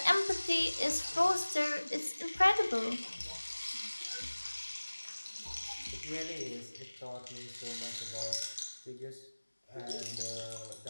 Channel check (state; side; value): inverted; both; correlation -1.00